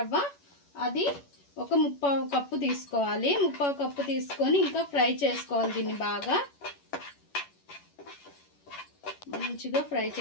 అది ఒక 3/4 కప్పు తీసుకోవాలి. 3/4 కప్పు తీసుకొని ఇంకా ఫ్రై చేసుకోవాలి. దీన్ని బాగా మంచిగా ఫ్రై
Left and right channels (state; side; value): late; right; 11 ms